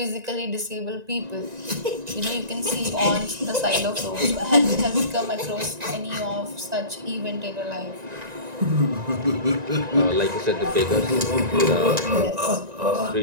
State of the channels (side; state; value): left; late; 1.9 ms